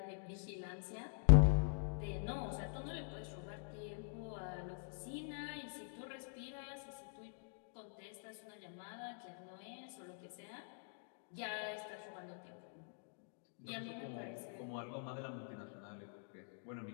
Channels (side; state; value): right; silent; digital silence